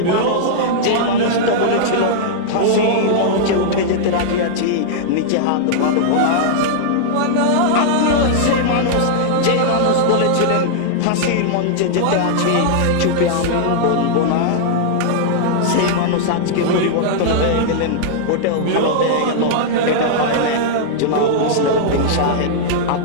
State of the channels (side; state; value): both; different; correlation -0.01